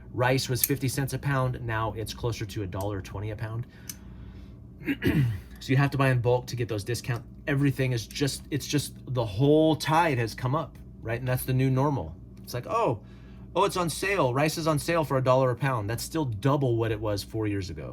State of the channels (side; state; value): both; identical; correlation 1.00